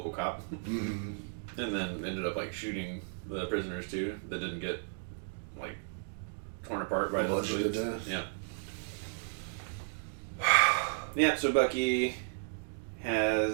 cop, and then ended up like shooting the prisoners too that didn't get like torn apart by the Bludgeoned to death. Yeah. Yeah. So Bucky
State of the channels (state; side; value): silent; left; digital silence